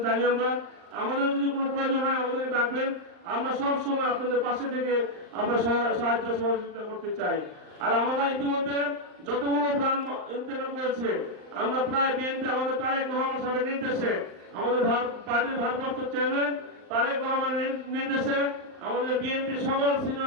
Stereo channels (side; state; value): left; late; 39 ms